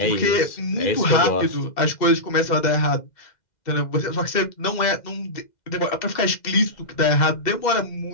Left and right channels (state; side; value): late; right; 2.0 ms